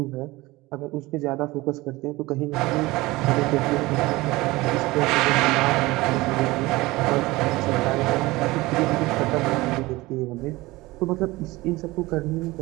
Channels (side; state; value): left; quieter; 20.4 dB